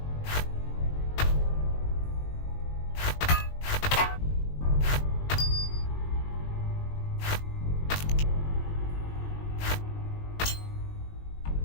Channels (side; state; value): right; late; 20 ms